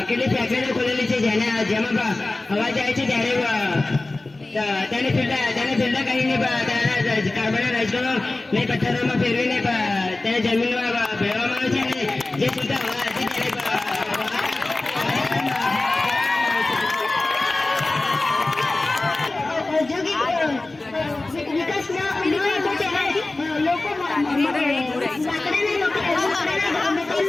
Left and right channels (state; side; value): quieter; right; 3.0 dB